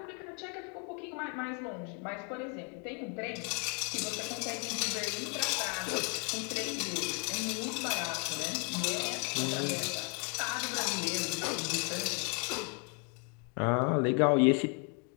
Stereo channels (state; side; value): quieter; right; 35.9 dB